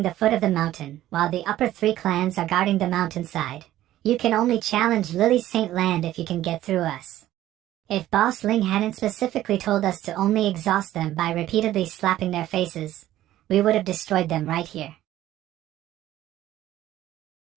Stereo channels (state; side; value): quieter; left; 13.8 dB